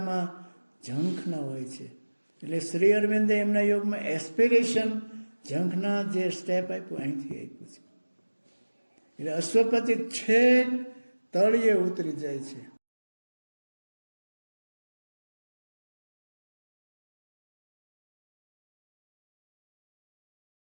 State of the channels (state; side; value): inverted; both; correlation -1.00